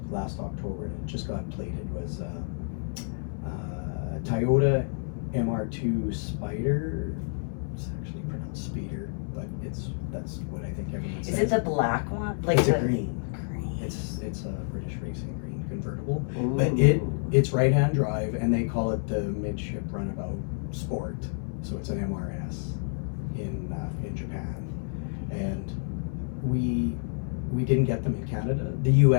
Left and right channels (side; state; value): right; silent; 59 dB below the other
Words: last October, and it just got plated, was Toyota MR2 Spider. It's actually pronounced Speeder, but that's what I think everyone says. Is it the black one? Like It's the a green. green. It's a British Racing green convertible, Ooh. but it's right-hand drive, and they call it the midship runabout sport. So it's an MRS in Japan, and we didn't get them in Canada. The